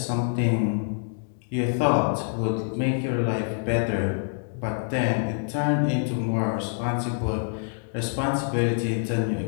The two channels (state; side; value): silent; right; digital silence